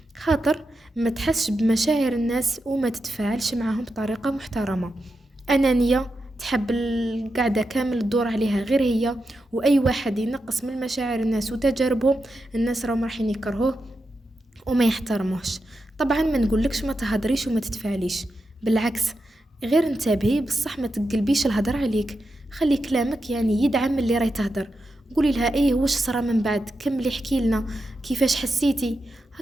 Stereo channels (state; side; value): normal; both; correlation 0.88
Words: خاطر ما تحسش بمشاعر الناس وما تتفاعلش معهم بطريقة محترمة. أنانية، تحب القعدة كامل تدور عليها غير هي، وأي واحد ينقص من مشاعر الناس وتجاربهم الناس راهم رايحين يكرهوه وما يحترموش. طبعا ما نقولكش ما تهدريش وما تتفاعليش، بالعكس غير انتبهي بصح ما تقلبيش الهدر عليك. خلي كلامك يعني يدعم اللي راي تهدر. قولي لها ايه واش صرا من بعد، كملي احكي لنا كيفاش حسيتي،